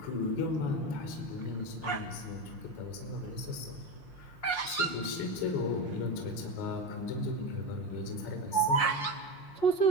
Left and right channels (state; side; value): late; right; 5.7 ms